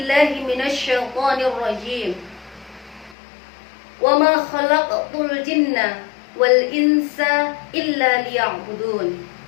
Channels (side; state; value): right; drops out; at 3.2 s